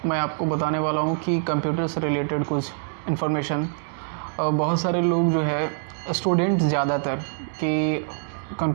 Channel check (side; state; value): left; silent; digital silence